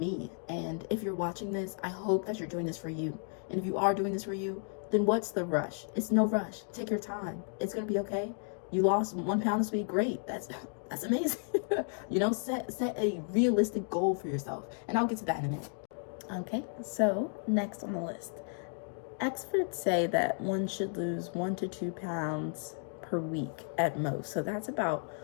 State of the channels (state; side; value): silent; right; 56 dB below the other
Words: And if you're watching this, I hope that you're doing this for you. And if you are doing this for you, then what's the rush? It's no rush. Take your time. It's going to be okay. You lost 1 pound this week. Great. That's amazing. Set a realistic goal for yourself. And I'll get to that in a minute. Okay. So next on the list, experts say that one should lose 1 to 2 pounds per week at most. So that's about